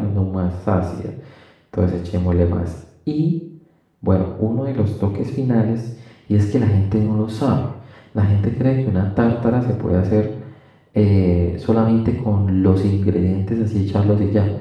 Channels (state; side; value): identical; both; correlation 1.00